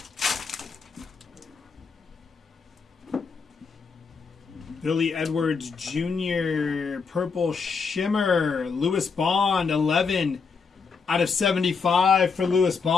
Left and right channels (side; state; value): right; quieter; 5.2 dB